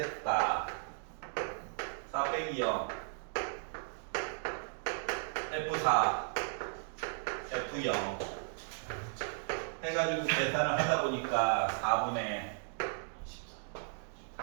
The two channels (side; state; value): left; silent; digital silence